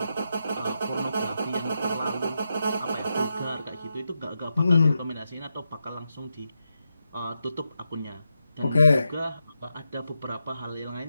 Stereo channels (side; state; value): both; inverted; correlation -0.87